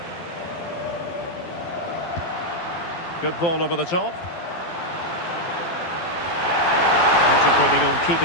Good ball over the top. Concentrating on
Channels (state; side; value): late; right; 12 ms